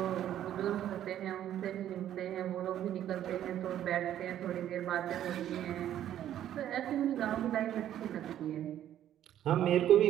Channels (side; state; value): left; quieter; 11.4 dB